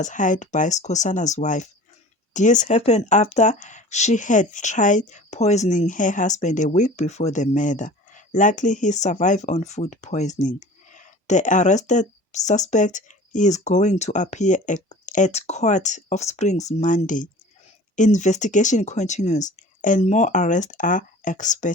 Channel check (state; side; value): normal; both; correlation 0.42